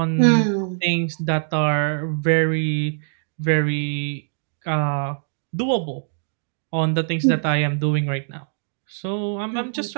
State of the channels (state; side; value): silent; left; digital silence